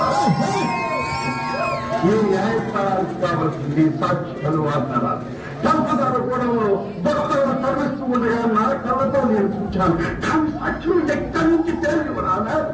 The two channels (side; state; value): both; identical; correlation 1.00